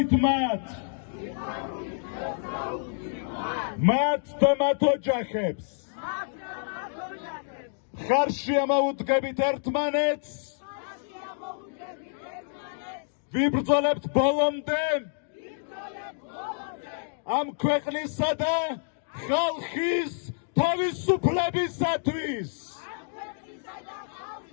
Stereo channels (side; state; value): right; silent; digital silence